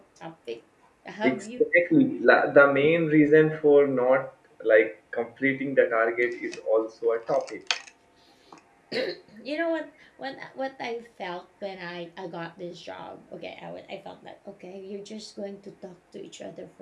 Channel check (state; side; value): identical; both; correlation 1.00